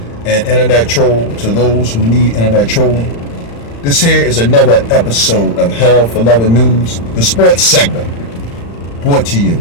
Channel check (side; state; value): right; late; 35 ms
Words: and internet troll to those who need internet trolling. This here is another episode of Hell for Loving News, the sports segment, brought to you